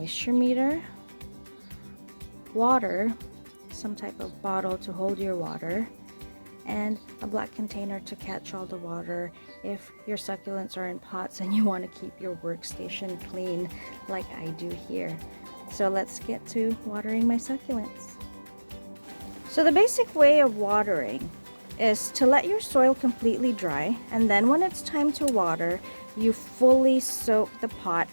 meter, water, some type of bottle to hold your water, and a black container to catch all the water if your succulents are in pots and you want to keep your workstation clean like I do here. So let's get to watering my succulents. So the basic way of watering is to let your soil completely dry, and then when it's time to water, you fully soak the pot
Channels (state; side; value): inverted; both; correlation -1.00